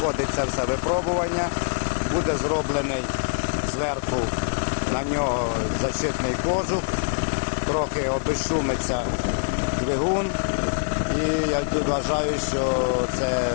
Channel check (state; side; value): silent; right; 60 dB below the other